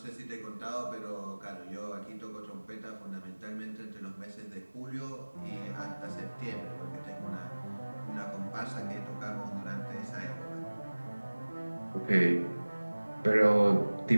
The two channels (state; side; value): inverted; both; correlation -1.00